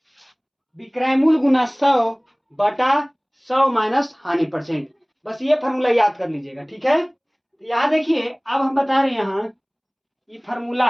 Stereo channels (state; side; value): identical; both; correlation 1.00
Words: विक्रय मूल्य गुना 100 बटा 100 माइनस हानि परसेंट। बस ये फॉर्मूला याद कर लीजिएगा, ठीक है। तो यहां देखिए, अब हम बता रहे हैं यहां ये फॉर्मूला